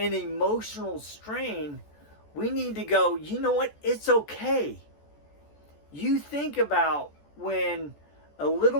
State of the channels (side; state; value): right; late; 14 ms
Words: emotional strain, we need to go, you know what? It's okay. You think about when a